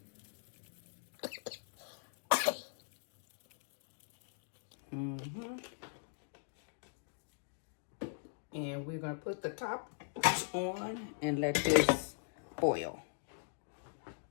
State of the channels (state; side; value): silent; right; digital silence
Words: And we're going to put the top on and let this boil.